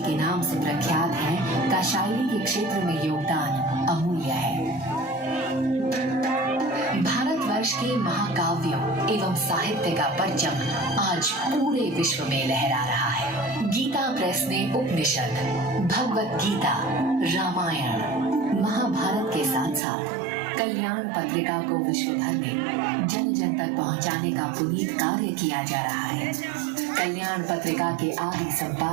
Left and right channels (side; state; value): left; drops out; at 19.8 s